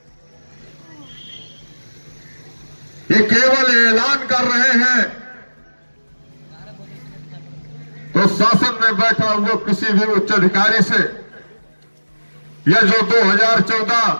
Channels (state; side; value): inverted; both; correlation -1.00